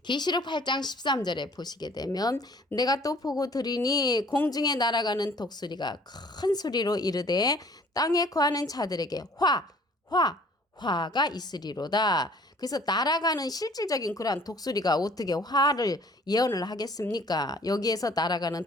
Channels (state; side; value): normal; both; correlation 0.54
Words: 계시록 8장 13절에 보시게 되면 내가 또 보고 들으니 공중에 날아가는 독수리가 큰 소리로 이르되 땅에 거하는 자들에게 화가 있으리로다. 그래서 날아가는 실질적인 그러한 독수리가 어떻게 화를 예언을 하겠습니까? 여기에서 날아가는